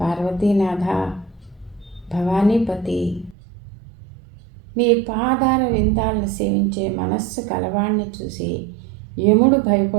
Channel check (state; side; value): drops out; left; at 3.4 s